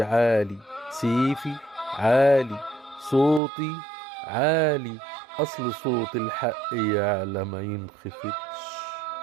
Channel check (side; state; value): left; drops out; at 3.4 s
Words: عالي، سيفي عالي، صوتي عالي، أصل صوت الحق يعلى ما ينخفتش.